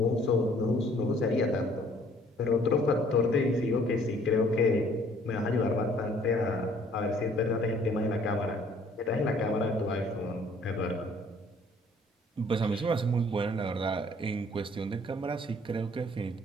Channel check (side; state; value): both; normal; correlation 0.59